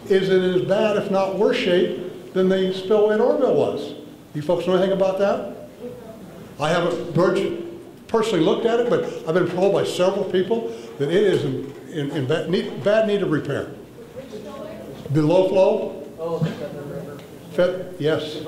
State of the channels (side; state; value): both; identical; correlation 1.00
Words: is in as bad, if not worse shape than the spillway at Oroville was. You folks know anything about that? I haven't personally looked at it, but I've been told by several people that it is in bad need of repair. The low flow? Oh, the Feather River. Yes.